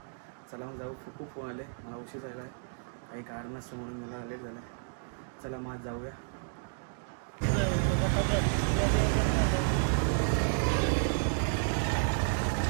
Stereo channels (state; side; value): silent; left; digital silence